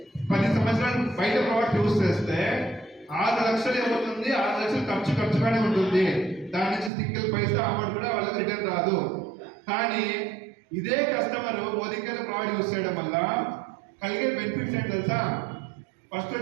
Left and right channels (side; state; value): left; drops out; at 6.9 s